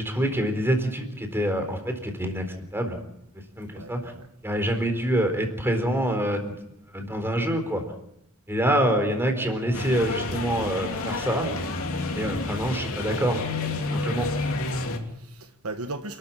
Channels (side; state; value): both; normal; correlation 0.59